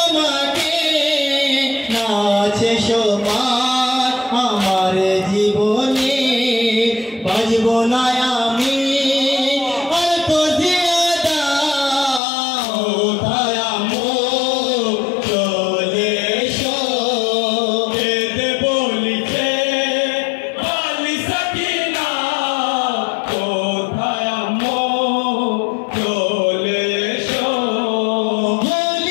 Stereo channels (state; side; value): drops out; right; at 12.2 s